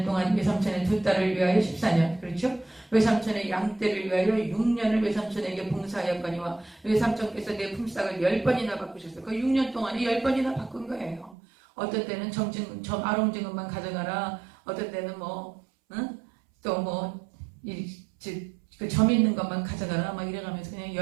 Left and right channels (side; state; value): left; drops out; at 11.4 s